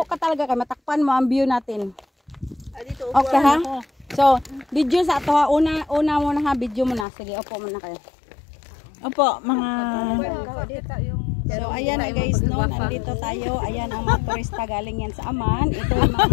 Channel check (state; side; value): drops out; right; at 7.1 s